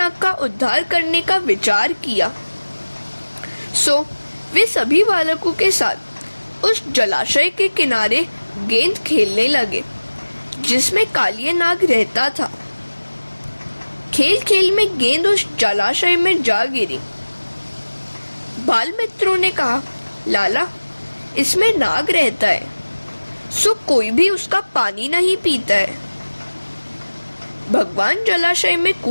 का उद्धार करने का विचार किया, सो वे सभी बालकों के साथ उस जलाशय के किनारे गेंद खेलने लगे जिसमें कालिया नाग रहता था। खेल खेल में गेंद उस जलाशय में जा गिरी। बाल मित्रों ने कहा, लाला, इसमें नाग रहता है, सो कोई भी उसका पानी नहीं पीता है। भगवान जलाशय में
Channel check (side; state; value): both; inverted; correlation -1.00